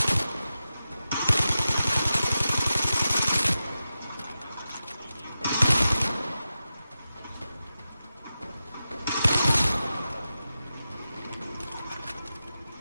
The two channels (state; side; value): inverted; both; correlation -0.92